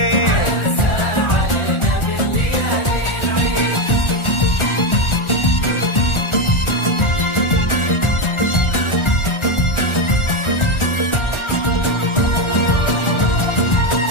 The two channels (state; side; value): late; right; 1.4 ms